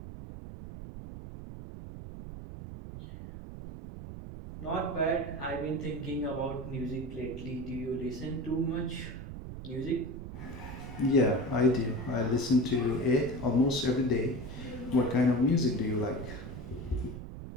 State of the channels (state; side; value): noise; right; rumble, 10 dB below the sound